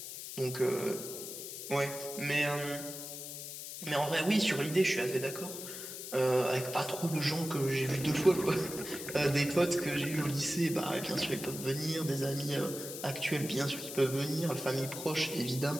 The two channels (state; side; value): noise; left; hiss, 9 dB below the sound